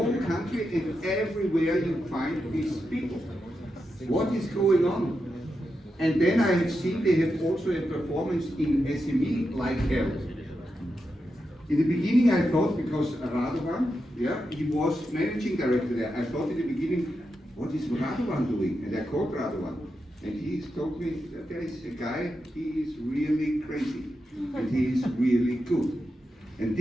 country, and everywhere you find these people. What is going on? And then I have seen they have also a performance in SME like hell. In the beginning I thought, because Radovan, he was managing director there, I thought in the beginning, what is Radovan doing? And I called Radovan. And he told me that there is a guy, he is really crazy. And he is really good. And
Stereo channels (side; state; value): both; normal; correlation 0.87